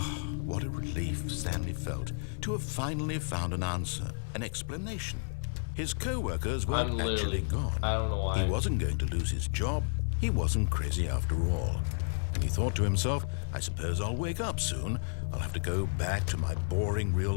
what a relief Stanley felt to have finally found an answer, an explanation. His co-workers weren't actually gone. I don't know why. He wasn't going to lose his job. He wasn't crazy after all. And he thought to himself, I suppose I'll wake up soon. I'll have to go back to my boring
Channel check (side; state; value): right; silent; 57 dB below the other